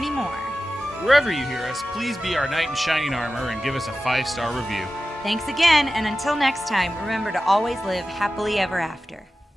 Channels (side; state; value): both; normal; correlation 0.94